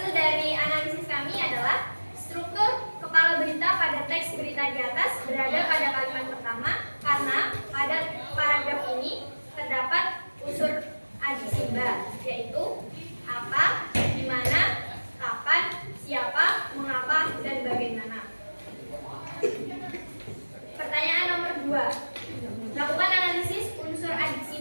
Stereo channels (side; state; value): both; inverted; correlation -1.00